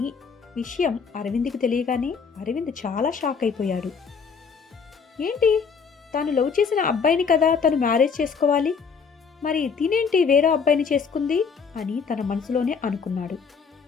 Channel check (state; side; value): quieter; right; 5.8 dB